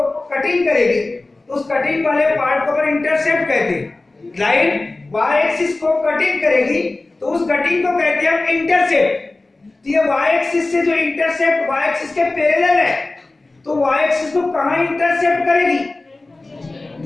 कटिंग करेगी उस कटिंग वाले पार्ट को अपन इंटरसेप्ट कहते हैं। लाइन y एक्सिस को कटिंग करेगी तो उस कटिंग को कहते हैं हम इंटरसेप्ट। तो ये y एक्सिस से जो इंटरसेप्ट y एक्सिस के पैरेलल है तो y एक्सिस को कहां इंटरसेप्ट करेगी?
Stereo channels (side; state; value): right; quieter; 3.1 dB